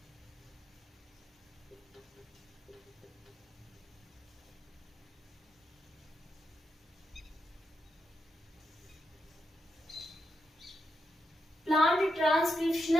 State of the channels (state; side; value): normal; both; correlation 0.85